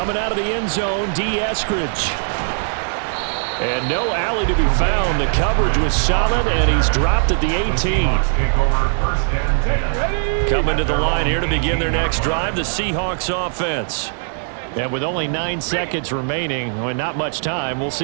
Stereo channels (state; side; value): silent; left; 66 dB below the other